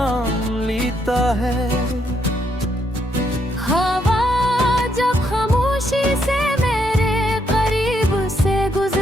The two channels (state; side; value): normal; both; correlation 0.75